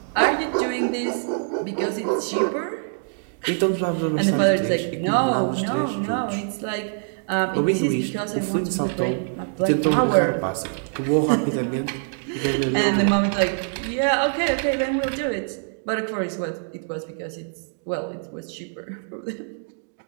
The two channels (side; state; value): left; silent; digital silence